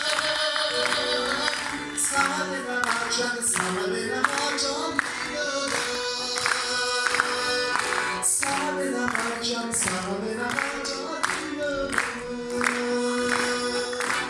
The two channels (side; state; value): both; identical; correlation 1.00